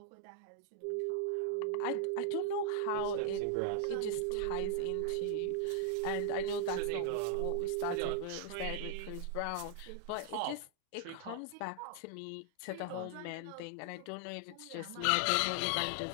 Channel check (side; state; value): both; different; correlation 0.00